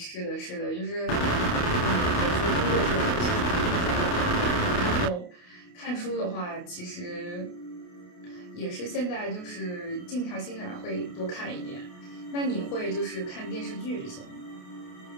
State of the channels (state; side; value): late; right; 28 ms